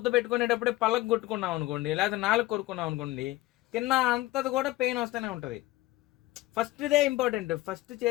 పెట్టుకునేటప్పుడే పళ్ళకు కొట్టుకున్నాం అనుకోండి, లేదా నాలుగు కొరుకున్నాం అనుకోండి, తిన్న అంతది కూడా పెయిన్ వస్తూనే ఉంటుంది. ఫస్ట్దే ఇంపార్టెంట్, ఫస్ట్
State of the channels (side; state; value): right; quieter; 18.0 dB